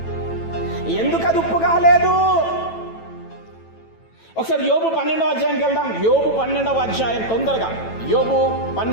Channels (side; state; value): right; late; 9.1 ms